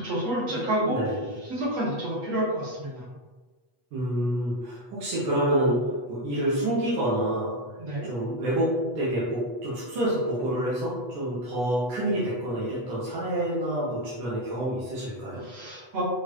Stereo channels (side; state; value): left; late; 8.1 ms